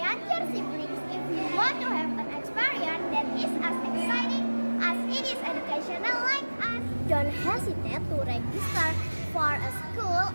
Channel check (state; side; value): inverted; both; correlation -1.00